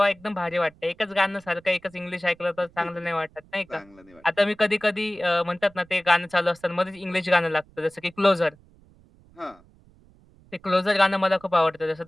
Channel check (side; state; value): right; noise; rumble, 28 dB below the sound